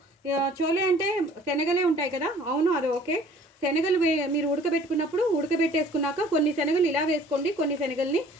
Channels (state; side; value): normal; both; correlation 0.52